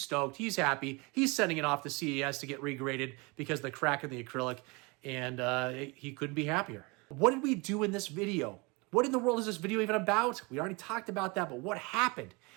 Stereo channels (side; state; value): left; quieter; 27.4 dB